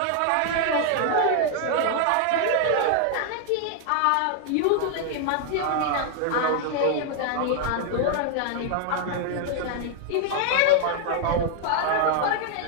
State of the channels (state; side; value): different; both; correlation 0.00